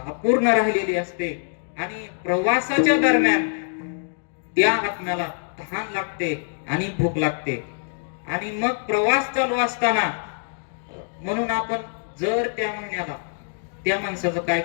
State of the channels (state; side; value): silent; right; digital silence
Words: अपूर्ण राहिलेली असते. आणि प्रवासाच्या दरम्यान त्या आत्म्याला तहान लागते आणि भूक लागते. आणि मग प्रवास चालू असताना म्हणून आपण जर त्या महिन्याला त्या माणसाचं काय